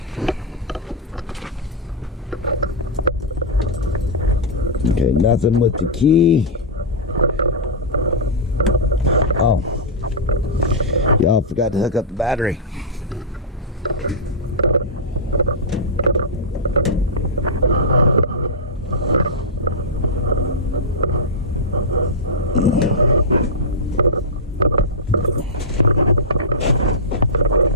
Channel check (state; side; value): normal; both; correlation -0.12